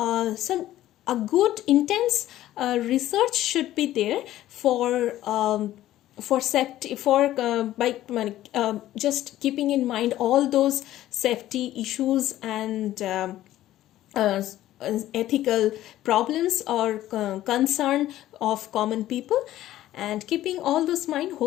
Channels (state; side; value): quieter; right; 14.0 dB